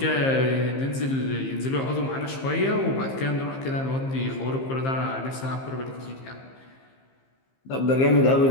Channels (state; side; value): late; right; 15 ms